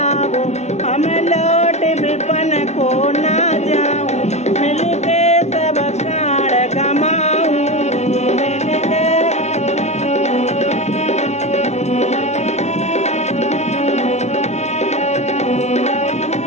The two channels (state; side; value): late; right; 0.32 ms